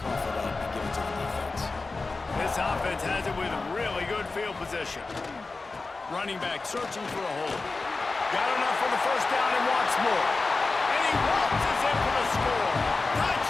it up and give it to the defense. This offense has it with really good field position. Running back searching for a hole. Got enough for the 1st down and wants more. And he waltzes in for the score.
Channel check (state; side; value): quieter; right; 3.7 dB